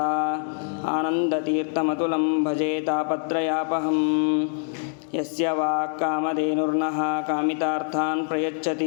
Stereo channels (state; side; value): silent; right; digital silence